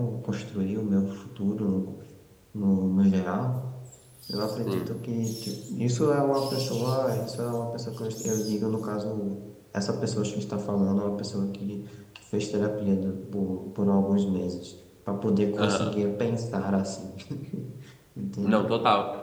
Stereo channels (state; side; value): identical; both; correlation 1.00